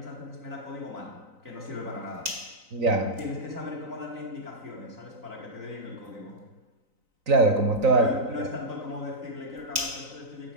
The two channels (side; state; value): left; late; 3.9 ms